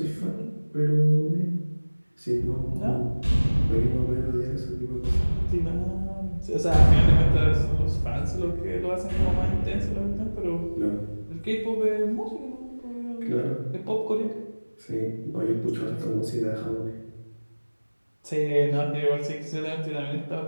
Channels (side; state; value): both; inverted; correlation -1.00